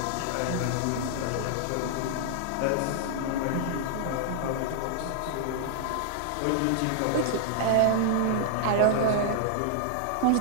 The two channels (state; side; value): different; both; correlation -0.01